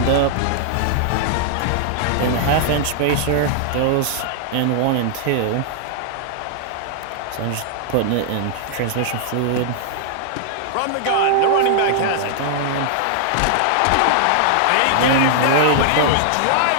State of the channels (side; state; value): both; different; correlation -0.01